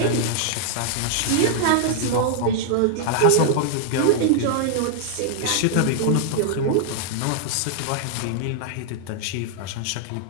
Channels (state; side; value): different; both; correlation -0.01